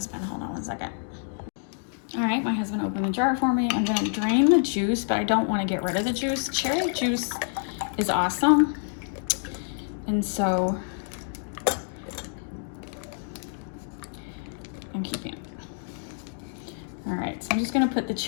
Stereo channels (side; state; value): right; silent; digital silence